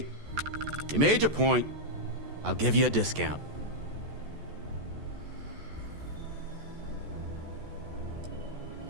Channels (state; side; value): late; left; 14 ms